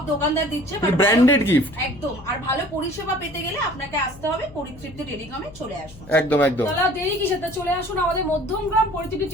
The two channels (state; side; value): noise; left; hum, 19 dB below the sound